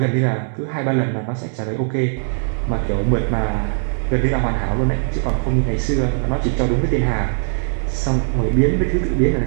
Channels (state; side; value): silent; left; 62 dB below the other